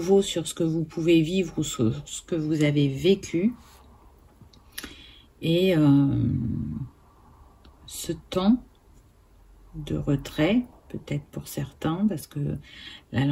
sur ce que vous pouvez vivre ou sur ce que vous avez vécu. Et ce temps de retrait, peut-être pour certains, parce que la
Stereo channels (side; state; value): both; identical; correlation 1.00